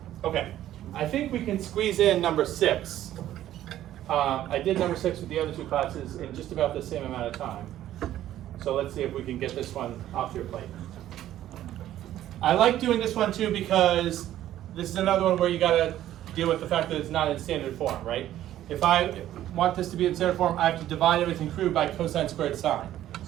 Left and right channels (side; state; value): left; quieter; 12.8 dB